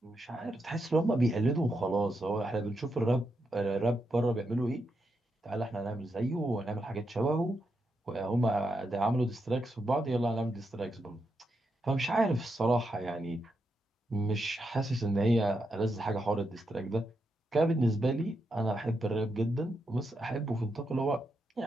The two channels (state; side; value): normal; both; correlation 0.84